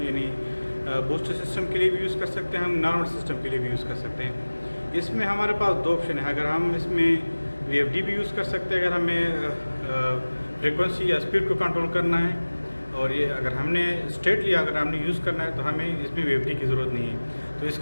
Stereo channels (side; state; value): both; inverted; correlation -1.00